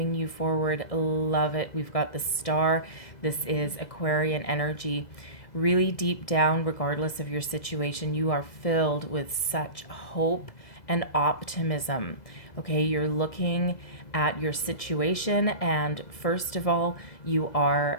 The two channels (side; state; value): right; late; 2.0 ms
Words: you forward? Love it. We've got the Star. This is Aquarian energy. Really deep down, regardless of your situation, you are filled with such hope and optimism. Okay, you're looking at your situation, and first of all,